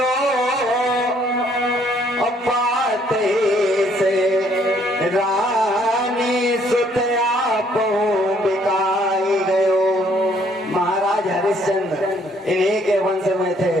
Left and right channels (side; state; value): both; normal; correlation 0.65